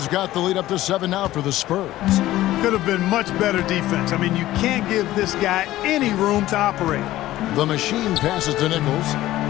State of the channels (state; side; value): quieter; right; 15.3 dB